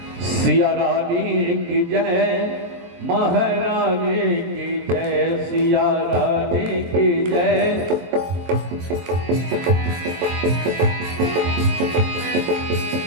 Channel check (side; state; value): left; late; 23 ms